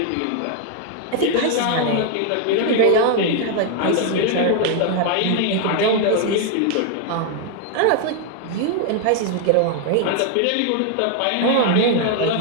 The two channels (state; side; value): different; both; correlation 0.00